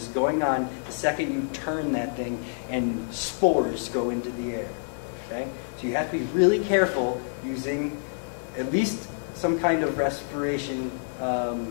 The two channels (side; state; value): right; silent; digital silence